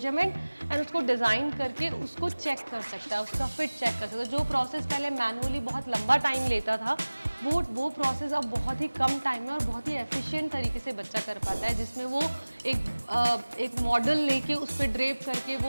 and उसको डिज़ाइन करके उसको चेक कर सकता है, उसका फिट चेक कर सकता है। जो प्रोसेस पहले मैनुअली बहुत लंबा टाइम लेता था, वो प्रोसेस अब बहुत ही कम टाइम में और बहुत ही एफिशिएंट तरीके से बच्चा कर पाता है, जिसमें वो एक मॉडल लेके उस पर ड्रेप करके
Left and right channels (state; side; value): inverted; both; correlation -1.00